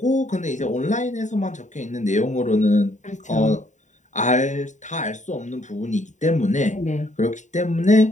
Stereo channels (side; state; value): right; late; 0.35 ms